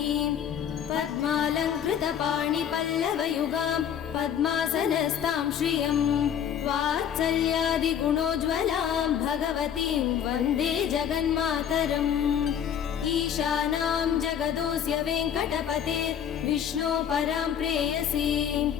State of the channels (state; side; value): quieter; right; 8.9 dB